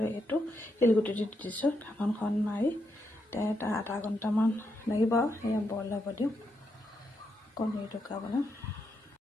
এইটো শিলগুটি দি দিছোঁ। ঢাকনখন মাৰি এটা আধা ঘণ্টামান লাগিব। এয়া বইল হ'ব দিওঁ। কণী টুকা বনাম।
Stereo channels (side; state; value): both; normal; correlation 0.81